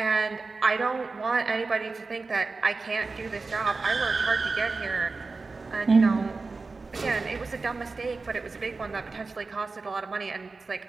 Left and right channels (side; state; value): left; quieter; 4.0 dB